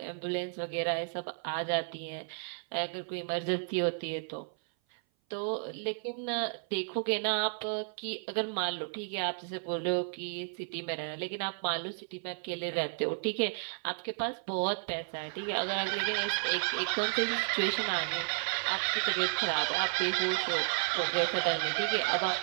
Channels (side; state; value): left; silent; 56 dB below the other